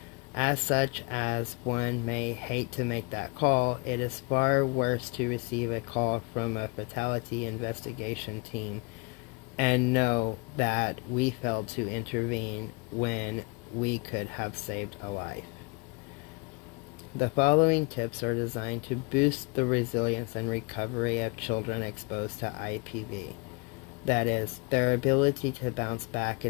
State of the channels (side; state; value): right; quieter; 29.6 dB